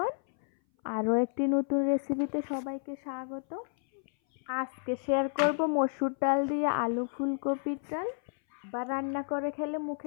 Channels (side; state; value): right; silent; 57 dB below the other